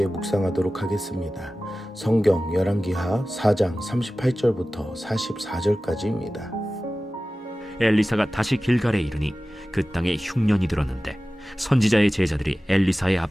묵상하도록 하겠습니다. 성경 열왕기하 4장 38절부터 44절까지입니다. 엘리사가 다시 길갈에 이르니 그 땅에 흉년이 들었는데 선지자의 제자들이 엘리사의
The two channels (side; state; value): both; normal; correlation 0.96